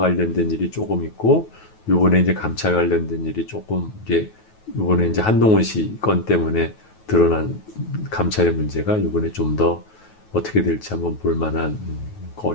일이 조금 있고 요번에 이제 감찰 관련된 일이 조금 이제 요번에 이제 한동훈 씨 건 때문에 드러난 감찰의 문제가 요번에 좀 더 어떻게 될지 한번 볼 만한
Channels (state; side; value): late; right; 9.3 ms